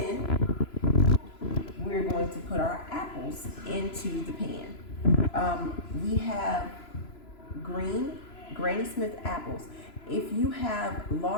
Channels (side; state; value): right; late; 3.0 ms